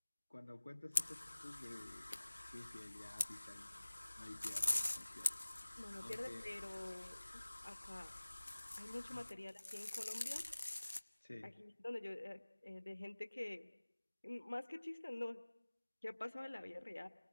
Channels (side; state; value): both; inverted; correlation -1.00